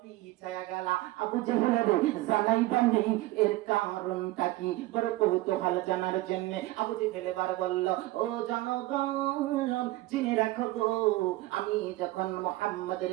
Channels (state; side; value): quieter; left; 18.4 dB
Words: গেলা। আবু জেহেল রে জানাইবা নেই এর কারণটা কি, বড় কৌতূহল জানার জন্য আবু জেহেল এবার বলল, ও জনগণ জেনে রাখো গো, আমি যখন মুহাম্মাদের